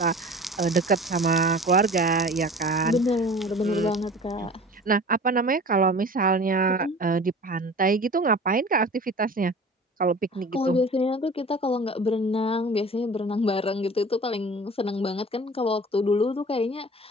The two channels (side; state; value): both; normal; correlation 0.41